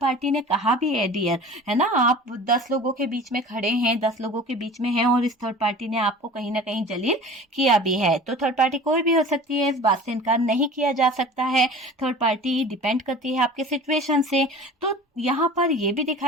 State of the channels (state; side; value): normal; both; correlation 0.40